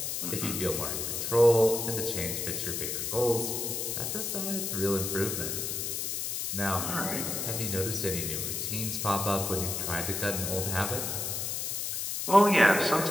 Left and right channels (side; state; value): left; noise; hiss, 2 dB below the sound